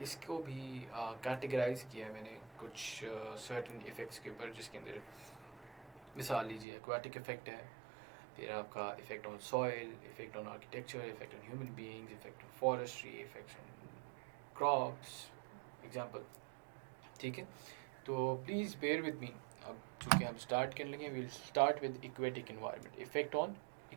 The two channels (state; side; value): drops out; left; at 6.7 s